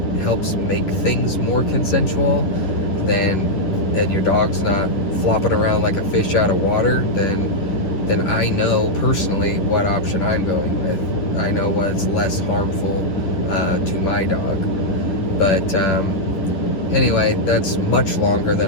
helps make things more consensual, and your dog's not flopping around like a fish out of water, then I know personally what option I'm going with. I know what's less harmful to my dog. But anyway, that's much longer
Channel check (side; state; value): right; late; 10 ms